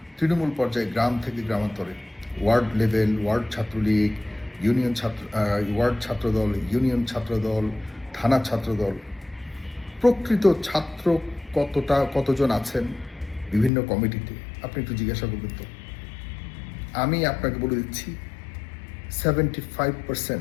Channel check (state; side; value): drops out; right; at 13.7 s